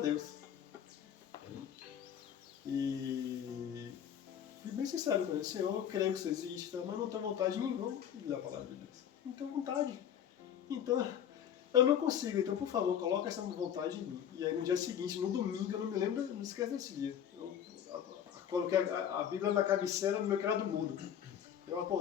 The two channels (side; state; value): right; quieter; 9.3 dB